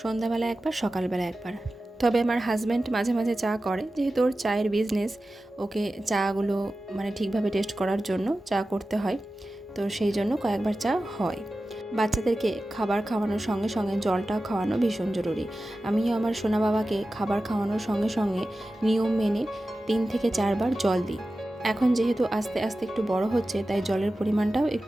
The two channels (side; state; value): both; normal; correlation 0.94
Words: সন্ধ্যাবেলা একবার, সকালবেলা একবার। তবে আমার হাজব্যান্ড মাঝে মাঝে চা করে, যেহেতু ওর চায়ের বিজনেস, ওকে চাগুলো মানে ঠিকভাবে টেস্ট করার জন্য চা করতে হয়, তো সেই জন্য কয়েকবার চা হয়। বাচ্চাদেরকে খাবার খাওয়ানোর সঙ্গে সঙ্গে জলটাও খাওয়ানো ভীষণ জরুরি। আমিও আমার সোনা বাবাকে খাবার খাওয়ানোর সঙ্গে সঙ্গে নিয়ম মেনে 3 থেকে 4 বার জল দিই। এখন যেহেতু আস্তে আস্তে একটু বড় হচ্ছে, তাই জলের পরিমাণটাও